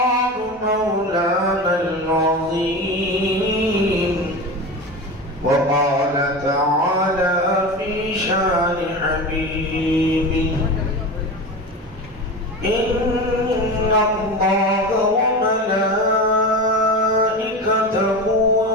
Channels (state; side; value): normal; both; correlation 0.27